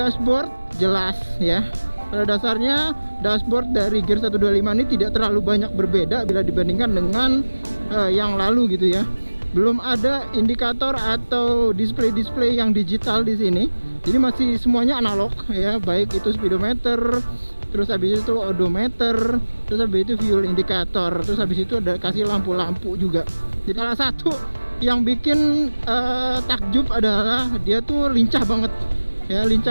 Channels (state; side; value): inverted; both; correlation -1.00